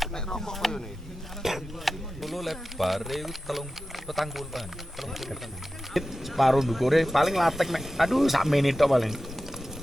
Nek rokok koyo ne. Kulo lebar iku 30-an. Separuh ndukure paling latek mek. Aduh sak menit tok paling.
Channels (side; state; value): both; normal; correlation 0.94